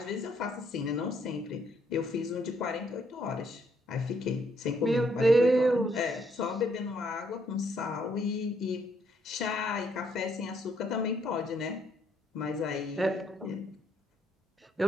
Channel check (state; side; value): normal; both; correlation 0.71